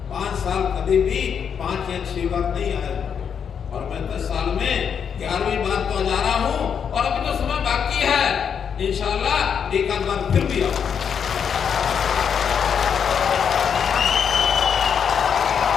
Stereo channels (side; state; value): right; quieter; 7.3 dB